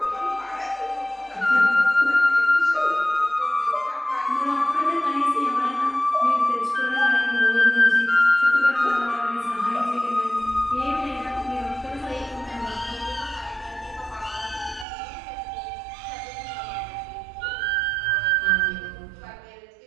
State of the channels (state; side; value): drops out; left; at 14.9 s